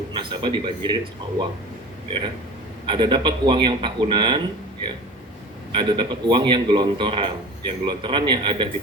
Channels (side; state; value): both; normal; correlation 0.37